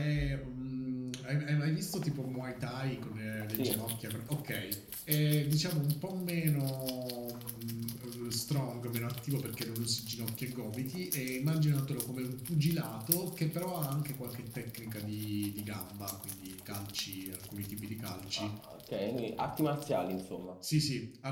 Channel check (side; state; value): both; identical; correlation 1.00